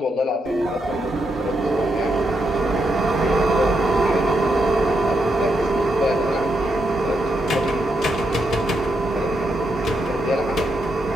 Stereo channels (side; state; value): both; normal; correlation 0.82